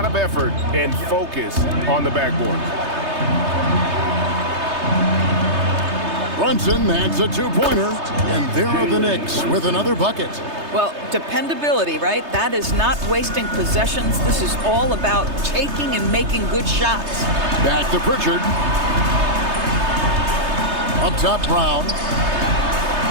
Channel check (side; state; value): left; late; 3.3 ms